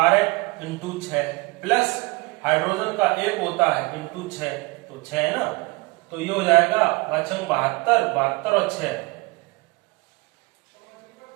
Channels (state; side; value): quieter; left; 26.0 dB